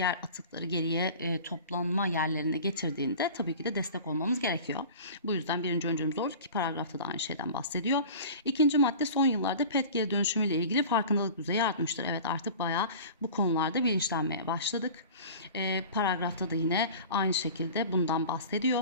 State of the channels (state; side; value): inverted; both; correlation -0.39